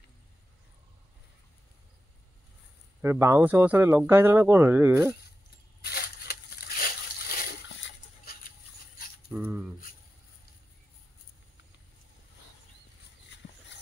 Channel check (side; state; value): both; normal; correlation 0.92